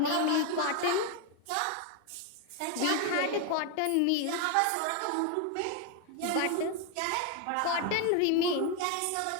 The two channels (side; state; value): both; different; correlation 0.01